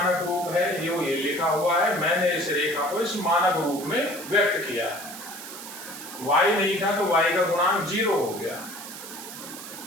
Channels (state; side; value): noise; right; hiss, 12 dB below the sound